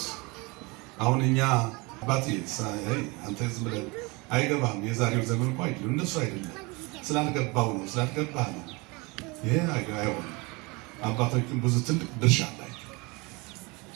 አሁን እኛ አባቴ አንተ ዝም ብለህ አይገባም፣ የዛሬው ዘመን እኮ አይደለም እነሱ አይደለም ስላልገባው ነው ስላልገባህ ነው። ይሄ አይሆንም። አባቶችም ብዙ ትልቅ ድርሻ አላቸው።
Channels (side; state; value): left; quieter; 26.6 dB